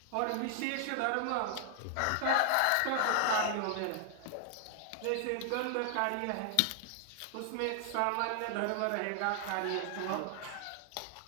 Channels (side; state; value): both; different; correlation 0.00